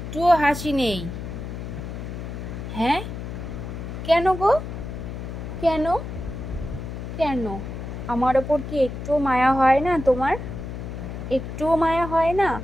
হাসি নেই। হ্যাঁ, কেন গো? কেন? কেন? আমার ওপর কি একটুও মায়া হয় না তোমার? একটুও মায়া হয় না?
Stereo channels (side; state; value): left; noise; hum, 7 dB below the sound